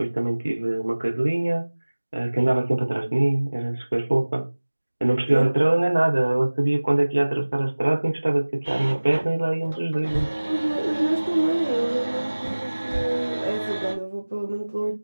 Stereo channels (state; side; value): inverted; both; correlation -1.00